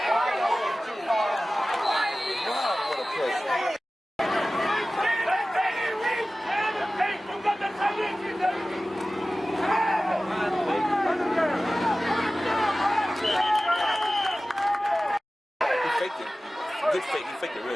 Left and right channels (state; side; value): normal; both; correlation 0.96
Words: Wow, what a play. Hey, you got the tight end, you know. He faked it. Good fake. He faked it